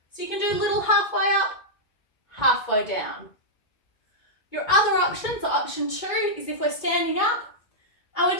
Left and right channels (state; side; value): late; right; 2.2 ms